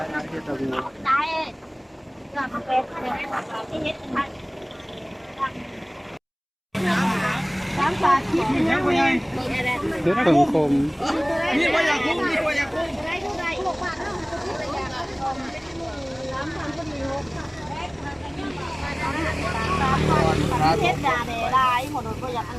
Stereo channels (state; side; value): identical; both; correlation 1.00